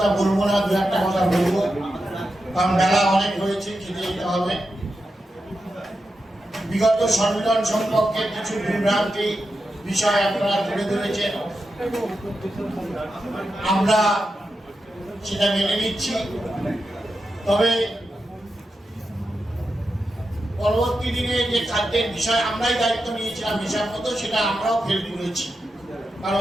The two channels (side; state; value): both; normal; correlation 0.89